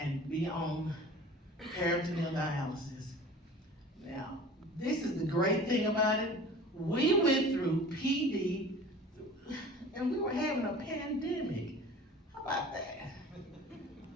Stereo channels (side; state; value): both; normal; correlation 0.42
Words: be on peritoneal dialysis. Now, this is the great thing about it. We went through PD and we were having a pandemic. How about that?